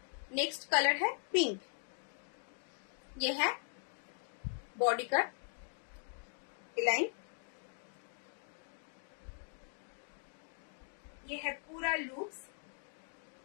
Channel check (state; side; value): silent; right; 51 dB below the other